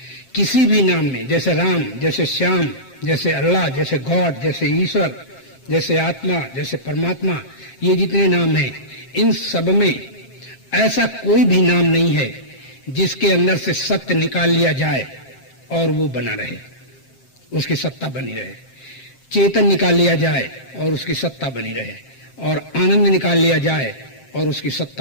किसी भी नाम में, जैसे राम, जैसे श्याम, जैसे अल्लाह, जैसे गॉड, जैसे ईश्वर, जैसे आत्मा, जैसे परमात्मा, ये जितने नाम हैं, इन सब में ऐसा कोई भी नाम नहीं है जिसके अंदर से सत्य निकाल लिया जाए और वो बना रहे, उसकी सत्ता बनी रहे। चेतन निकाल लिया जाए और उसकी सत्ता बनी रहे, और आनंद निकाल लिया जाए और उसकी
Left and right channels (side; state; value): right; late; 7.6 ms